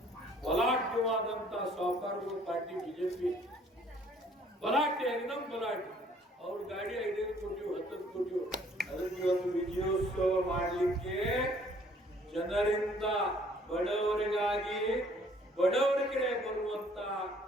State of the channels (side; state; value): both; normal; correlation 0.59